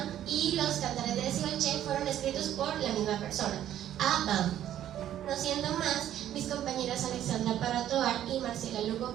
y los Cantares de Desi-Balché fueron escritos por la misma persona, Abam. No siendo más, mis compañeras Alexandra Parra y Marcela Lugo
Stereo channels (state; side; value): quieter; left; 11.5 dB